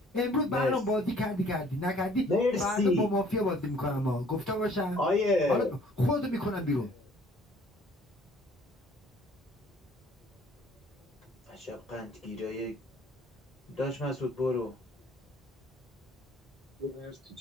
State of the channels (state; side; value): normal; both; correlation 0.57